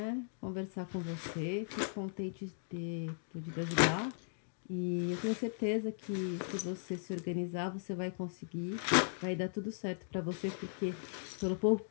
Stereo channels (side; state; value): right; silent; digital silence